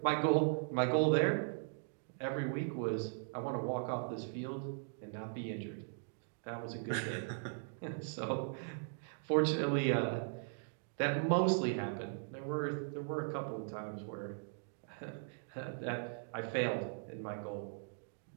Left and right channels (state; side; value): silent; left; digital silence